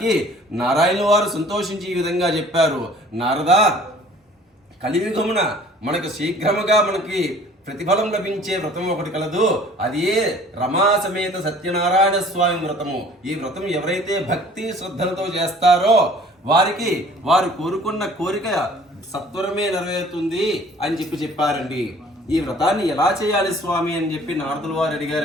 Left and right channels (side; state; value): both; normal; correlation 0.51